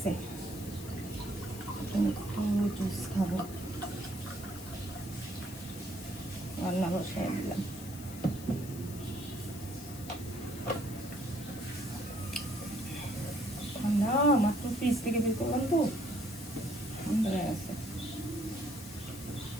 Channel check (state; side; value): noise; left; hiss, 14 dB below the sound